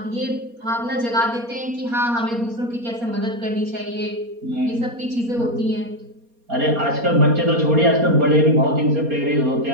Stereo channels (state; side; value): late; left; 4.2 ms